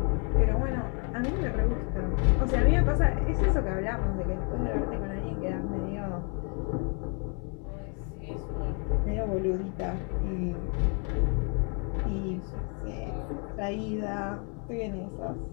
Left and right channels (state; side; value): quieter; right; 37.6 dB